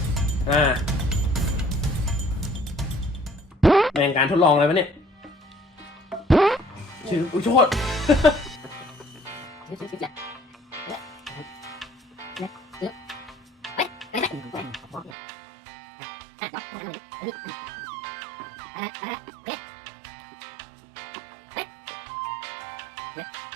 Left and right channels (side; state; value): left; drops out; at 15.2 s